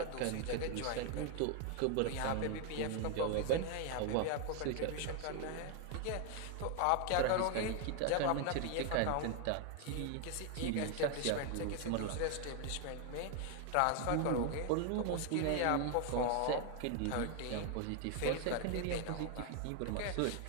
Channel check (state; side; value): different; both; correlation 0.00